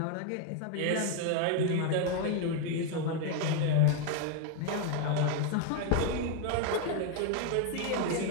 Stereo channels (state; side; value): different; both; correlation 0.01